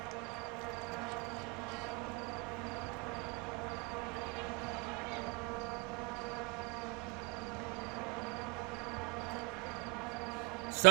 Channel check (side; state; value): left; quieter; 28.1 dB